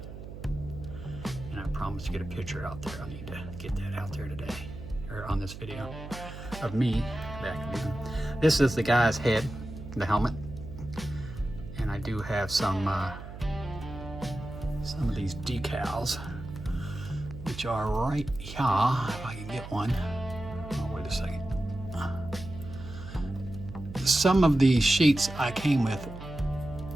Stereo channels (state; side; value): noise; right; hum, 12 dB below the sound